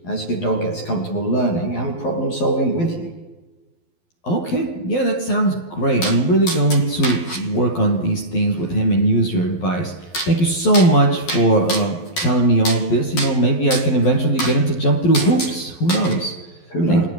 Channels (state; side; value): late; right; 12 ms